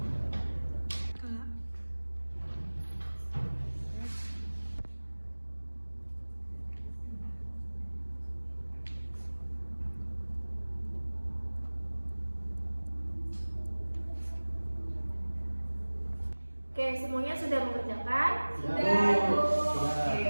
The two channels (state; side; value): inverted; both; correlation -1.00